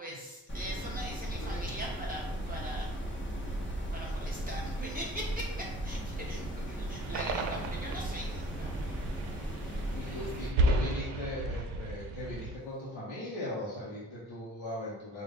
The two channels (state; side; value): normal; both; correlation 0.49